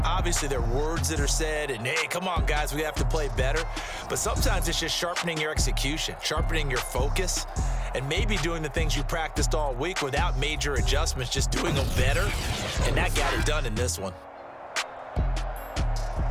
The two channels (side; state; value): both; identical; correlation 1.00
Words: Obviously, there are words that are said, and, hey, come on, guys, we have to play better. But sometimes it's just sharpening your execution, sharpening your focus, and maybe doing the things you practiced all week without major adjustments, just doing them better. And that got it done in this one.